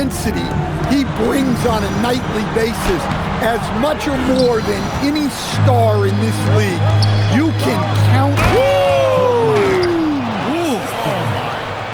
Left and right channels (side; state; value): both; identical; correlation 1.00